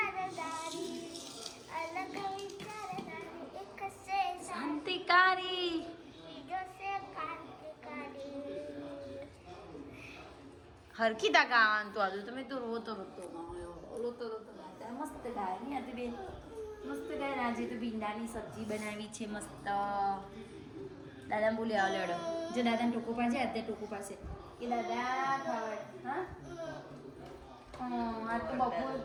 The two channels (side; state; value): both; identical; correlation 1.00